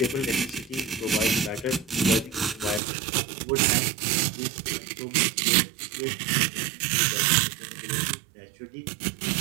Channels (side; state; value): left; drops out; at 2.8 s